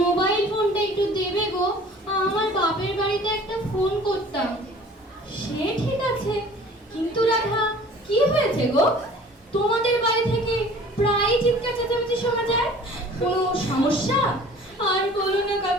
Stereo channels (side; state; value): both; normal; correlation 0.47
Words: মোবাইল ফোনটা একটু দেবে গো, আমার বাপের বাড়িতে একটা ফোন করতাম। সে ঠিক আছে, কিন্তু রাধা কি হয়েছে গো? তোমাদের বাড়ি থেকে প্রায় চিৎকার চেঁচামেচি শোনা যায়, কোনো সমস্যা? আর বলো না